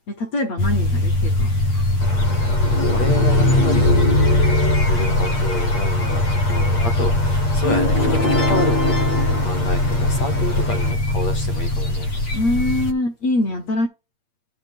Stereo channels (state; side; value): late; right; 8.5 ms